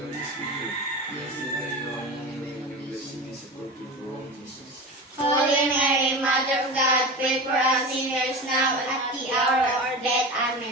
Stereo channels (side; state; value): both; normal; correlation 0.28